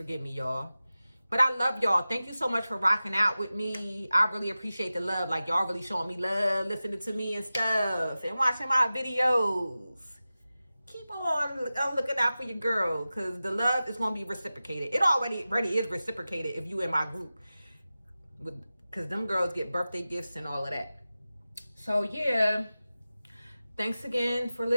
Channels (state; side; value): inverted; both; correlation -0.95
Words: me, y'all. But I love y'all. Thank you so much for rocking out with me. I really appreciate the love. Like, y'all really showing me love, listening to me and stuff, and watching my videos. Keep on looking out for your girl, because the love is going to be reciprocated. It already is reciprocated if you in my group. Because them girls get birthday gifts and all of that. So, yeah. Thanks again for